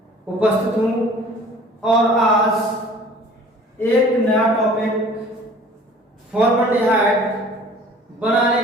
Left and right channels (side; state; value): both; normal; correlation 0.49